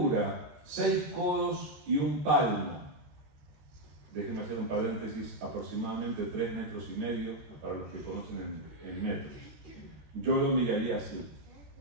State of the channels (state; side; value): late; left; 13 ms